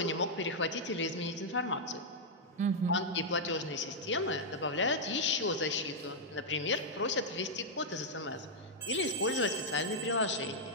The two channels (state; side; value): normal; both; correlation -0.05